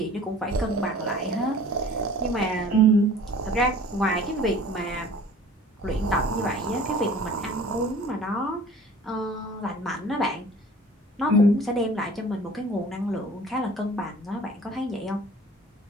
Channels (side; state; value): both; normal; correlation 0.47